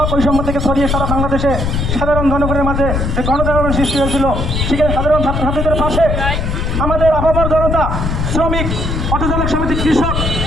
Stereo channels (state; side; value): noise; left; rumble, 1 dB below the sound